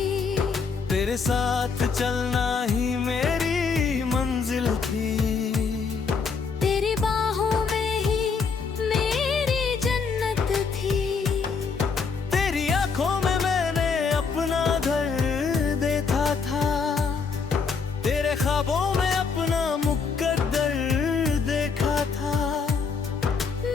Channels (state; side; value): quieter; right; 5.3 dB